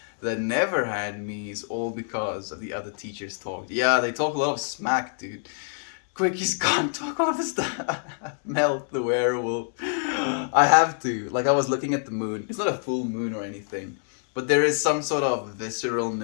that never had me is all because of the other teachers talked. Yeah, they talk a lot of smack, dude. Quickies can't talk all of this stuff. Melt the werewolf. I have to. Like, I was looking at the moon. It's not a full moon or anything, but there is some sort of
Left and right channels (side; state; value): right; silent; digital silence